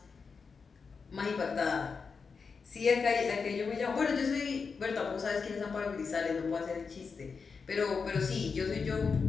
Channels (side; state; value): right; quieter; 5.2 dB